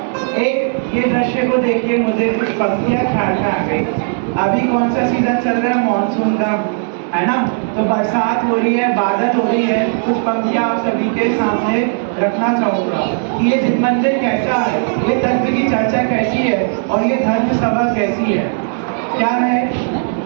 एक ये दृश्य को देखिए, मुझे कुछ पंक्तियां ख्याल में आ गई। अभी कौन सा सीजन चल रहा है? मानसून का, है ना? तो बरसात हो रही है, बादल हो रही है। कुछ पंक्तियां आप सभी के सामने रखना चाहूंगा कि ये जिन मंदिर कैसा है, ये तत्व की चर्चा कैसी है और ये धर्म सभा कैसी है। क्या है?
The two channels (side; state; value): left; silent; 59 dB below the other